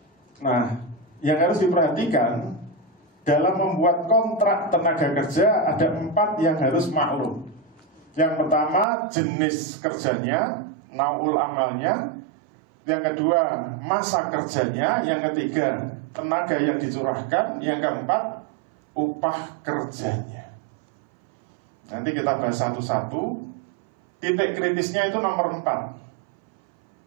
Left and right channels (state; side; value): drops out; left; at 8.8 s